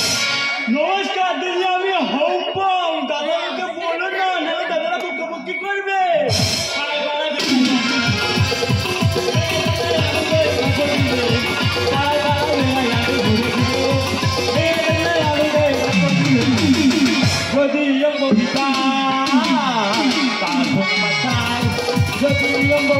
নমস্কার দিদি, আমি হম্পম। দাদাকে বলো না, নাহলে দাদারা বকবকি করবে। যদিও বৌদি তার ফোন বাঁচায়, যদিও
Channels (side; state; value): both; identical; correlation 1.00